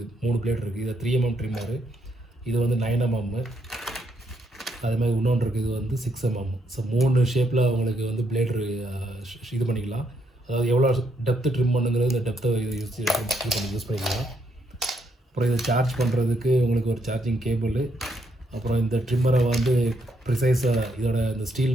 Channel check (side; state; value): both; normal; correlation 0.75